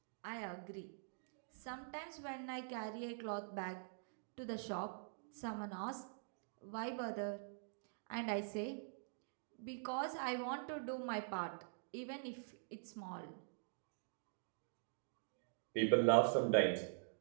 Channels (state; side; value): silent; left; digital silence